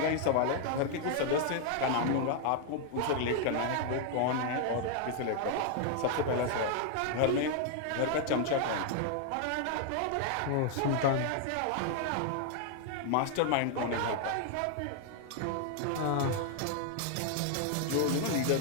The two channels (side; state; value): both; different; correlation 0.00